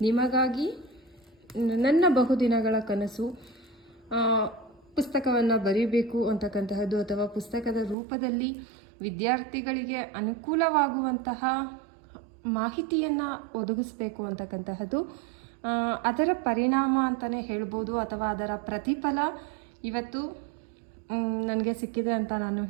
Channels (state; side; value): drops out; left; at 8.0 s